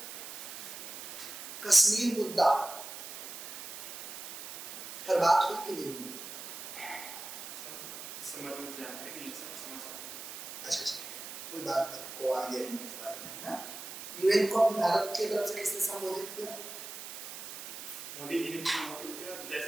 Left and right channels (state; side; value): noise; right; hiss, 9 dB below the sound